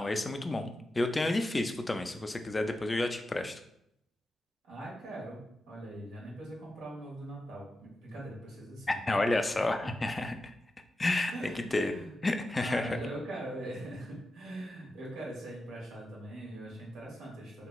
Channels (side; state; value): both; normal; correlation 0.91